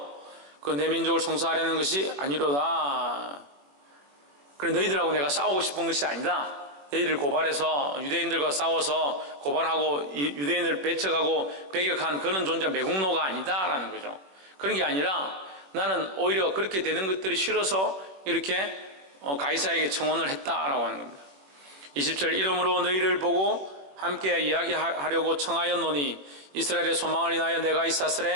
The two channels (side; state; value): left; late; 21 ms